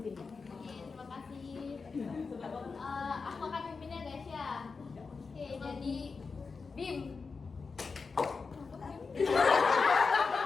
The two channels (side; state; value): right; quieter; 4.7 dB